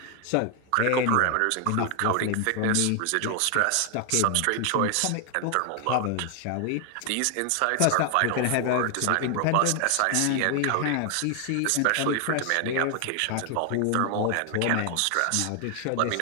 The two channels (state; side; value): different; both; correlation 0.00